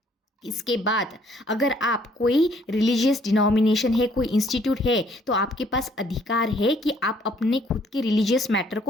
इसके बाद अगर आप कोई रिलीजियस डिनोमिनेशन है, कोई इंस्टीट्यूट है, तो आपके पास अधिकार है कि आप अपने खुद के रिलीजियस मैटर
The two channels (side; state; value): both; normal; correlation 0.63